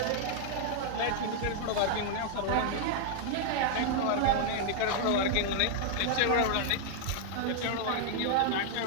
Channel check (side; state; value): both; different; correlation -0.01